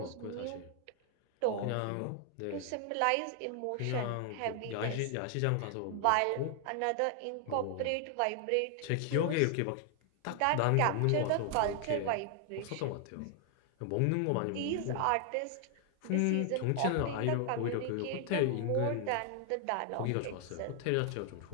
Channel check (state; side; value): different; both; correlation 0.00